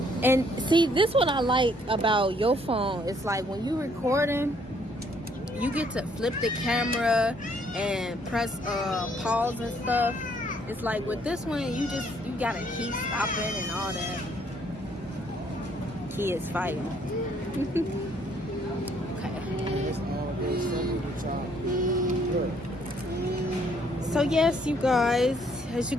And see, this what I like about your phone. It's like when you recording, you get to flip the camera and press pause and stuff. It's like with this one, you gotta keep stopping and all that. Kids fighting. So yes, you guys, as you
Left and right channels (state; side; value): normal; both; correlation 0.66